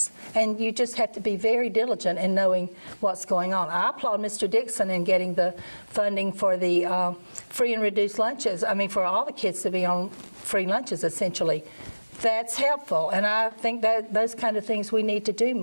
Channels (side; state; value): both; inverted; correlation -1.00